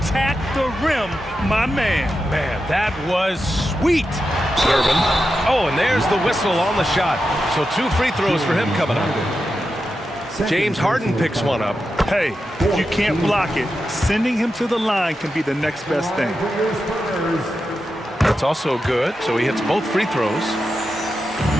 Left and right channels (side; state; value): both; normal; correlation 0.89